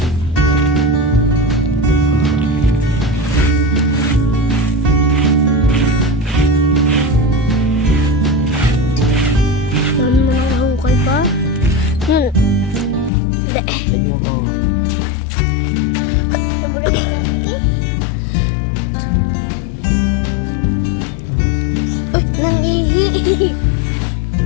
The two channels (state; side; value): drops out; right; at 13.1 s